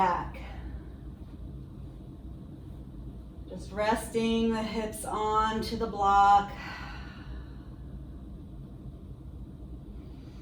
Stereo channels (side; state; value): both; identical; correlation 1.00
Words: Just resting the hips onto the block.